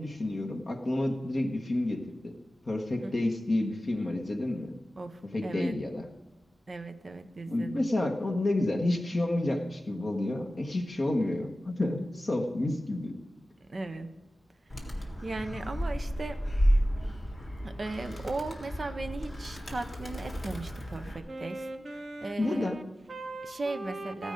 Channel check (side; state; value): both; normal; correlation 0.95